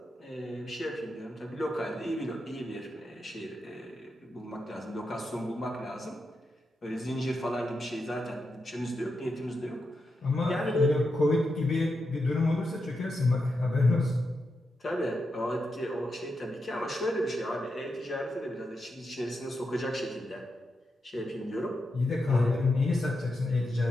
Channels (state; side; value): normal; both; correlation 0.86